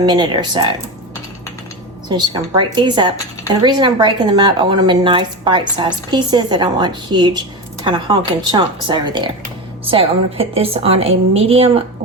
or so. So I'm just going to break these up. And the reason I'm breaking them up, I want them in nice bite-sized pieces. I don't want huge kind of honking chunks over there. So I'm going to put this on a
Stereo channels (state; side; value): normal; both; correlation 0.21